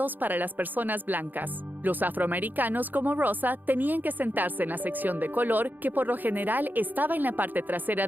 para las personas blancas. Los afroamericanos como Rosa tenían que sentarse en la sección de color, que por lo general estaba en la parte trasera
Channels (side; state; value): left; late; 0.087 ms